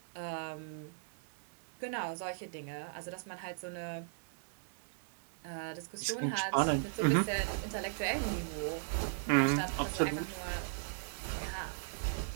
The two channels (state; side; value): silent; left; digital silence